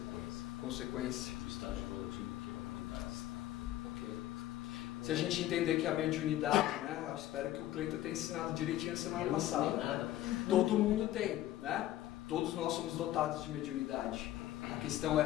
Consequência. Do estágio evolutivo que a humanidade está. Ok. Se a gente entender que a mediunidade, né? Eu espero que o Cleiton tenha ensinado direitinho na semana passada. Né? Todo mundo tem, né? Todos nós somos dotados de mediunidade. A questão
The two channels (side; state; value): right; quieter; 13.8 dB